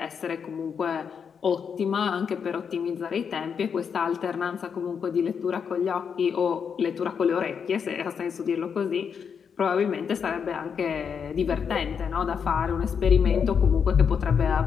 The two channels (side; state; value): right; quieter; 6.8 dB